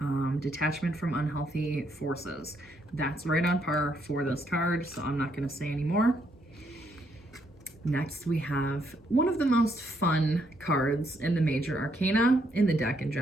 detachment from unhealthy forces. That's right on par for this card, so I'm not gonna say any more. Next we have one of the most fun cards in the major arcana, in the deck in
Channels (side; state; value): both; normal; correlation 0.73